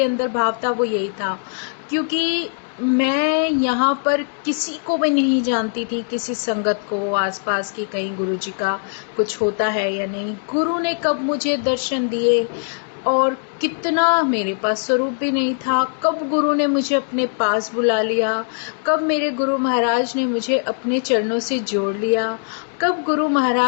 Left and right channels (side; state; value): right; silent; 65 dB below the other